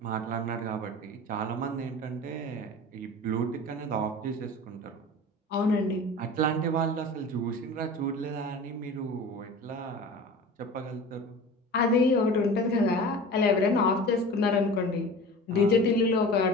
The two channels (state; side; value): normal; both; correlation 0.36